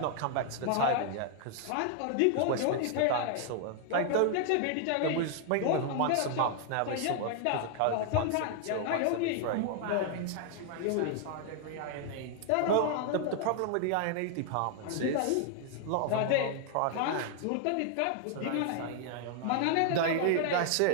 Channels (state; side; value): different; both; correlation 0.00